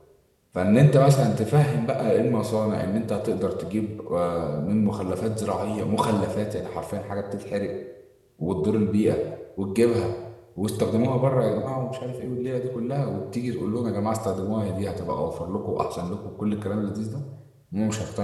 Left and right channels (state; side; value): identical; both; correlation 1.00